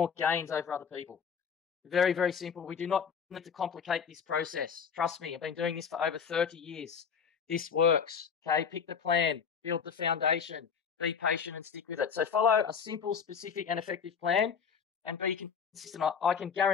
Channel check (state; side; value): quieter; right; 6.7 dB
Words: gains over other people. Very, very simple. We do not need to complicate this process. Trust me, I've been doing this for over 30 years. This works. Okay, pick the plan, build the foundation, be patient and stick with it. So follow a simple, specific and effective plan and be consistent. I can